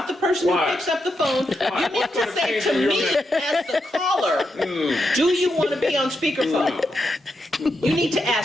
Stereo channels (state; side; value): normal; both; correlation 0.84